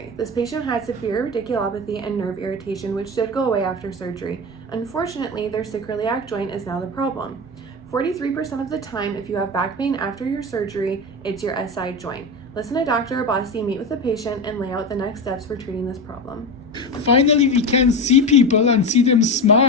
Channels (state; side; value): normal; both; correlation 0.21